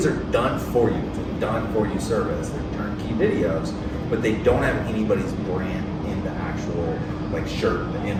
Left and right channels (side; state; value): both; identical; correlation 1.00